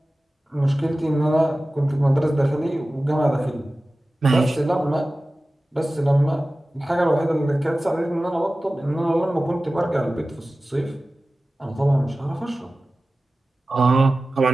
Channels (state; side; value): normal; both; correlation 0.96